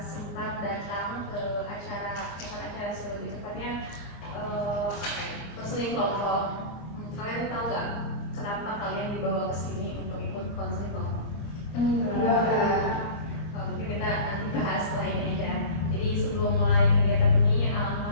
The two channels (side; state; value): right; late; 24 ms